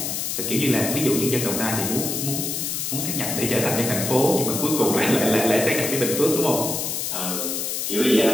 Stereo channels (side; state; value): left; noise; hiss, 2 dB below the sound